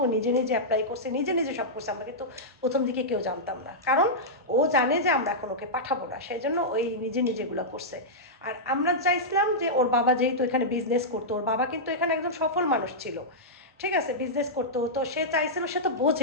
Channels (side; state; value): both; normal; correlation -0.11